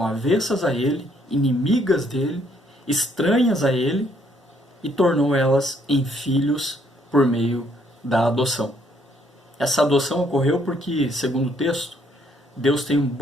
avessas a ele, inimigas dele, estranhas a ele, e tornou elas em filhos por meio da adoção. Essa adoção ocorreu porque, segundo o texto, Deus tem um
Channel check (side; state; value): both; normal; correlation 0.68